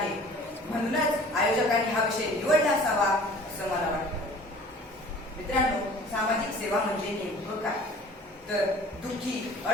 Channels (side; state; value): both; normal; correlation 0.48